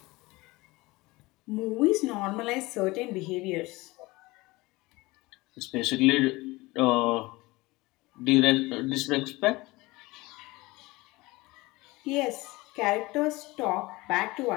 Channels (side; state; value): right; quieter; 21.6 dB